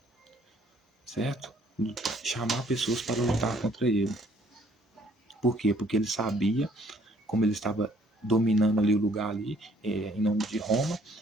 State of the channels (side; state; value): both; normal; correlation 0.62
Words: certo? Chamar pessoas para lutar contra ele. Por quê? Porque ele sabia, como ele estava dominando ali o lugar ali, em nome de Roma,